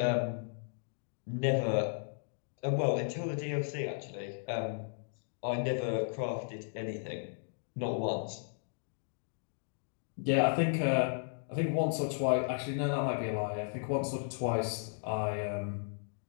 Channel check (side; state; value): right; silent; digital silence